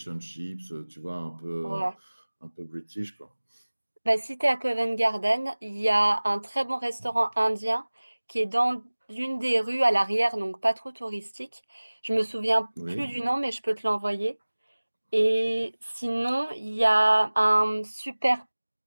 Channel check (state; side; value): inverted; both; correlation -1.00